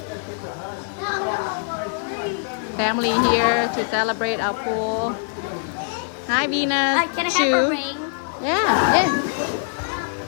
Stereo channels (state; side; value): silent; right; digital silence